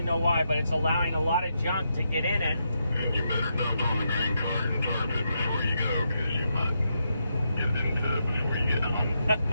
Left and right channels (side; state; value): both; inverted; correlation -0.82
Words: know why, but it's allowing a lot of junk to get in it. And you better dump on the grain cart and tarp it before you go, because you might get into it before you get home.